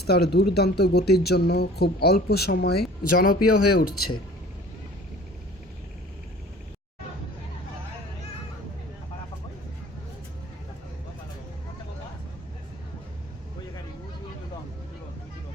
তার দুর্দান্ত গতির জন্য খুব অল্প সময়ে জনপ্রিয় হয়ে উঠছে।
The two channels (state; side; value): normal; both; correlation 0.47